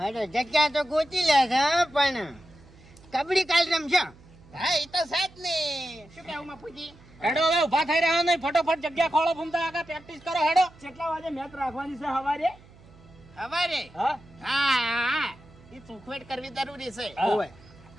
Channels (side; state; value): right; noise; hum, 24 dB below the sound